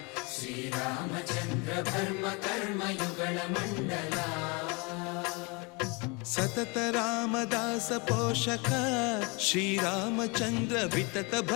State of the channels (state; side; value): quieter; right; 29.7 dB